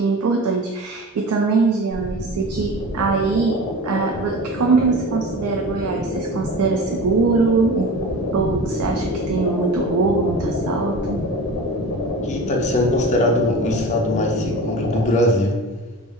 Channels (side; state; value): both; normal; correlation 0.34